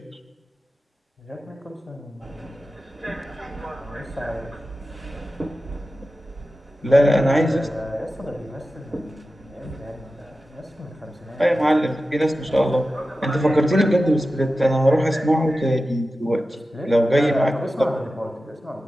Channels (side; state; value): both; normal; correlation 0.93